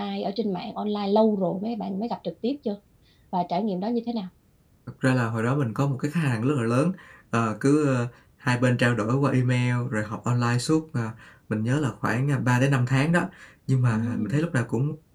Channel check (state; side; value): identical; both; correlation 1.00